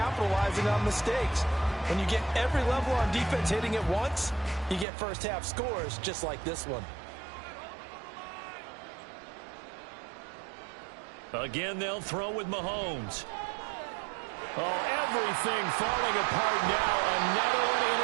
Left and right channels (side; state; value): left; drops out; at 4.9 s